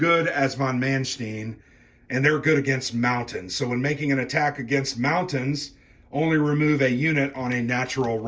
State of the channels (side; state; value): both; identical; correlation 1.00